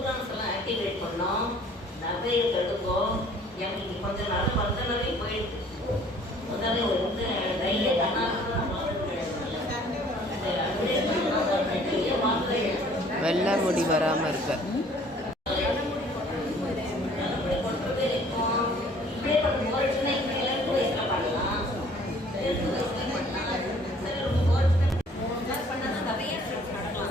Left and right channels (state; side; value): normal; both; correlation 0.55